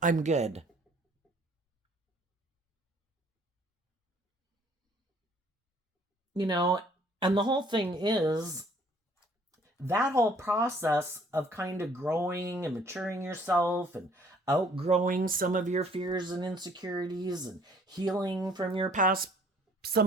I'm good. And the whole thing is, that whole process of kind of growing and maturing yourself and outgrowing some of your fears and insecurities and healing from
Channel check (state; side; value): normal; both; correlation 0.58